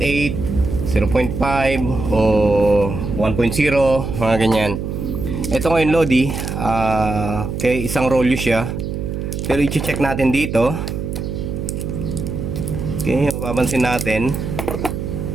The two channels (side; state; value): right; noise; hum, 4 dB below the sound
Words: o 1.0, mga ganyan. Ito ngayon Lodi, okay, isang rolyo siya. Pero i-check natin dito. Okay, mapapansin natin.